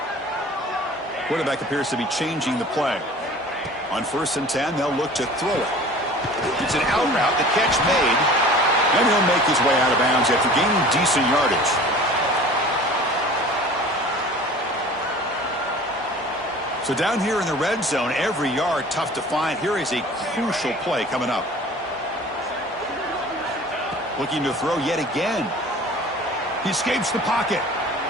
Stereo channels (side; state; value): both; normal; correlation 0.44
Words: Quarterback appears to be changing the play. On 1st and 10, they'll look to throw it. It's an out route, the catch made. And he'll make his way out of bounds after gaining decent yardage. So down here in the red zone, every yard tough to find. Here is a crucial play coming up. Looking to throw yet again. He escapes the pocket.